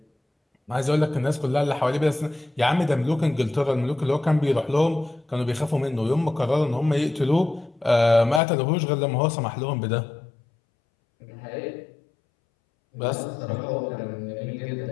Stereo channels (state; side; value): drops out; right; at 8.4 s